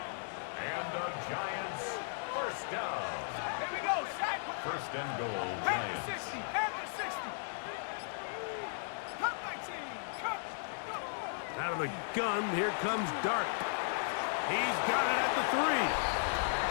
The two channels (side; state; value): right; silent; digital silence